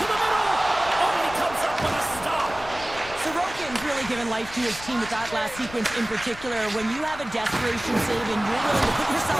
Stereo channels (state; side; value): noise; left; rumble, 16 dB below the sound